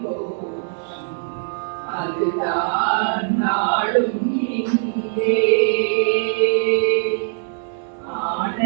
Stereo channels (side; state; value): left; silent; digital silence